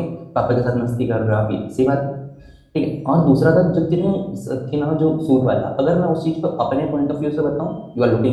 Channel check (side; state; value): both; identical; correlation 1.00